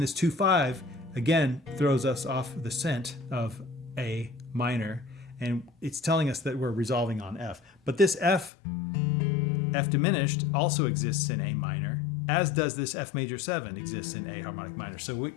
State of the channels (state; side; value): drops out; right; at 8.5 s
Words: 2-5 again throws us off the scent of A minor, and it's telling us that we're resolving on F. But this F diminished also exists in A minor, as does this F major 7 exists in A harmonic minor. So